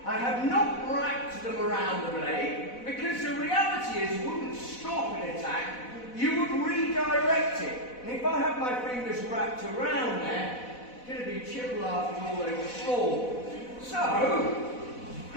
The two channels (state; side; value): late; right; 4.1 ms